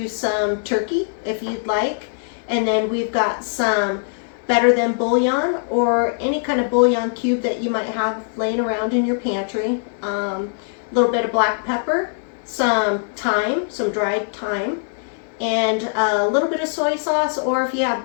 some turkey if you'd like. And then we've got some better than bouillon or any kind of bouillon cube that you might have laying around in your pantry. A little bit of black pepper, some thyme, some dried thyme, and a little bit of soy sauce, or if you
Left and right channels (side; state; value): right; silent; digital silence